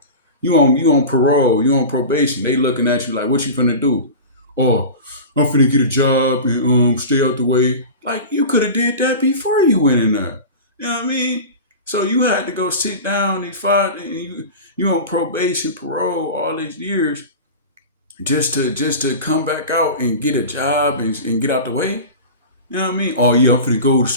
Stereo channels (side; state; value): both; inverted; correlation -0.31